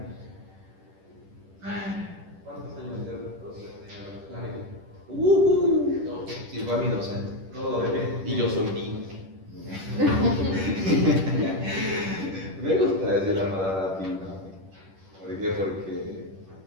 ¿Cuántos años de docente? Sí, fue mi docente. Todo bebé. Y yo soy Dino. Me gusta decir la palabra Dino. ¿Por qué? Porque,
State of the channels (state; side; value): late; left; 10 ms